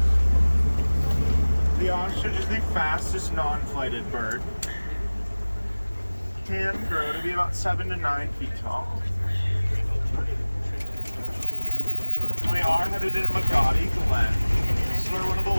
The ostrich is the fastest non-flighted bird. Can grow to be about 7 to 9 feet tall. We are headed into Magadi Glen. This is where one of the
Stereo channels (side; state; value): both; inverted; correlation -1.00